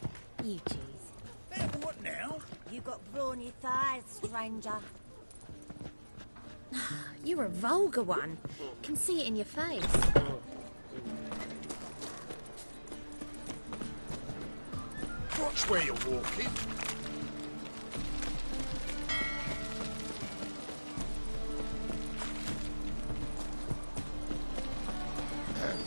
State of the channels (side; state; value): both; inverted; correlation -1.00